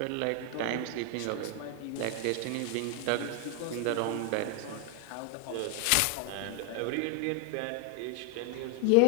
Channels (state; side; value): different; both; correlation 0.00